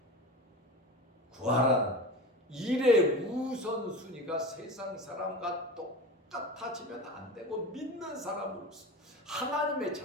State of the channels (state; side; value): normal; both; correlation 0.30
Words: 구하라는 일의 우선순위가 세상 사람과 똑같아지면 안 되고, 믿는 사람으로서, 하나님의